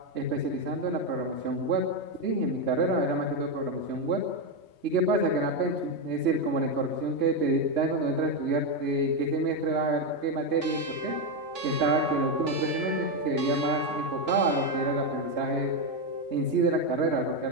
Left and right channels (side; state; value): left; late; 3.1 ms